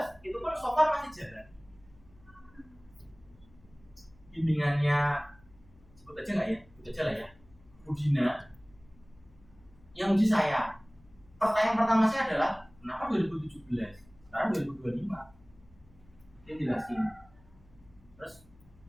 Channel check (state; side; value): noise; left; hum, 27 dB below the sound